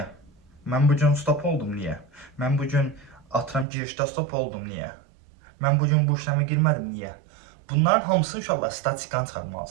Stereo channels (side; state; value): left; drops out; at 3.7 s